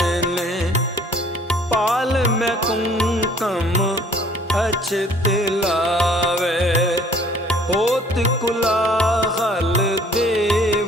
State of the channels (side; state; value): both; normal; correlation 0.55